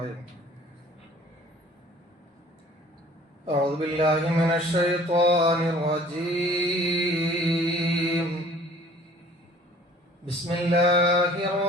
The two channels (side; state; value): both; normal; correlation 0.51